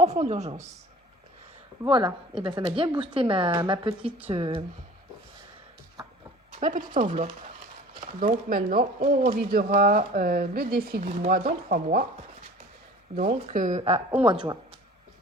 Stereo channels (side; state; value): both; normal; correlation 0.44